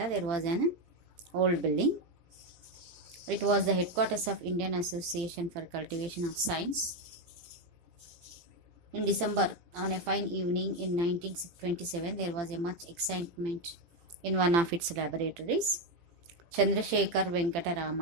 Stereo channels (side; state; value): left; late; 18 ms